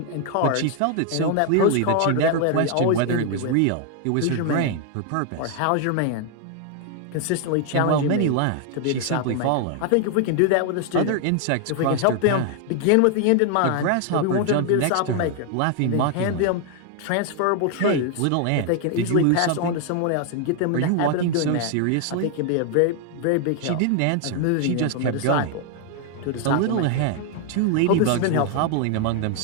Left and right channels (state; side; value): different; both; correlation 0.00